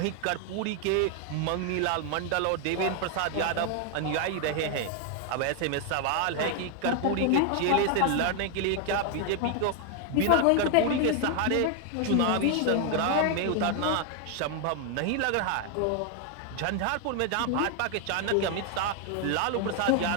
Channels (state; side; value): different; both; correlation 0.01